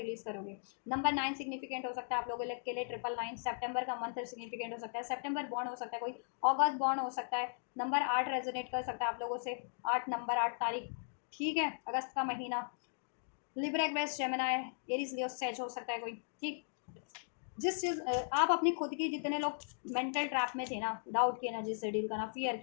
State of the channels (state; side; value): silent; right; digital silence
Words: करोगे। नंबर 9 सिग्निफिकेंट हो सकता है आप लोगों के लिए, 999, सेप्टेम्बर का मंथ सिग्निफिकेंट हो सकता है, सेप्टेम्बर बॉन्ड हो सकता है कोई, अगस्त बॉन्ड हो सकता है। नंबर 8 रेजोनेट कर सकता है आप लोगों से, 8 नंबर, 8 तारीख, ठीक है, अगस्त का महीना। Libra Aquarius Gemini Aries Leo says हो सकता है कोई, ठीक। जिस चीज़ आप अपनी खुद की, जितने लोग मेंटल ट्रैप में थे ना, डाउट की एनर्जी से डील करना, फियर